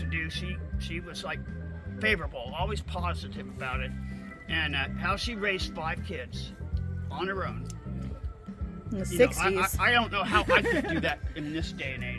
to do, she was like favorable, always positive about it. And how she raised 5 kids on her own. In the You know, 60s. I don't know how I could do that in this day and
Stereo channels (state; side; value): identical; both; correlation 1.00